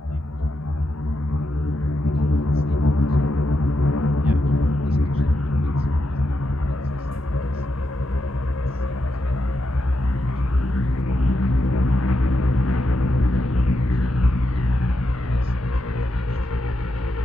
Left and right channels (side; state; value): both; normal; correlation 0.85